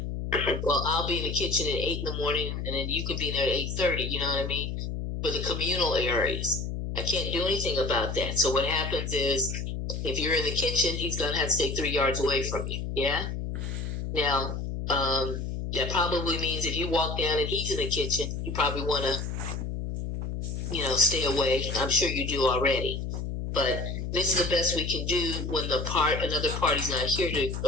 well, I'll be in the kitchen at 8 in the morning, and then you can be there at 8:30. You know what I mean? For the communal areas, I can't do anything about that. So what happens is, if you're in the kitchen, he's gonna have to stay 3 yards away from you. Yeah. Now, that probably means if you walk down and he's in the kitchen, you probably want to, stay away. I'm sure you do already. But this is the best we can do when another party's not here to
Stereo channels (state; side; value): noise; left; hum, 4 dB below the sound